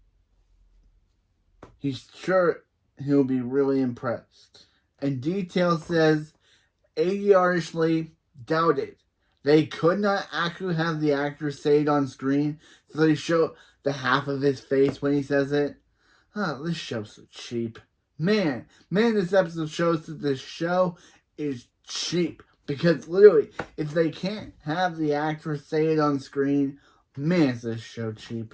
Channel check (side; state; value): both; identical; correlation 1.00